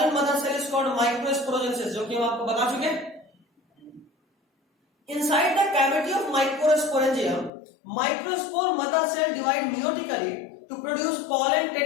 mother cell is called microsporogenesis, जो कि हम आपको बता चुके हैं। Inside the cavity of microsporangium, microspore mother cell divide meiotically to produce pollen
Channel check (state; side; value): drops out; right; at 7.5 s